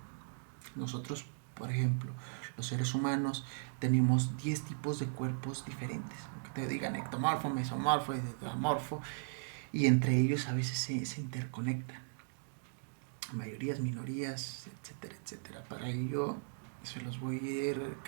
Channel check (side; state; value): left; silent; digital silence